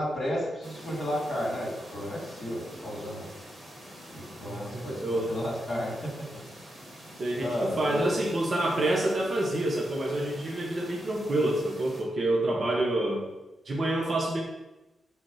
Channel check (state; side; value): normal; both; correlation 0.85